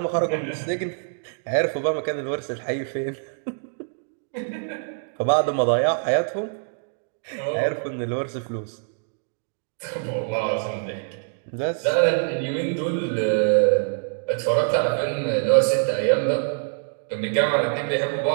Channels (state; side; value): silent; left; digital silence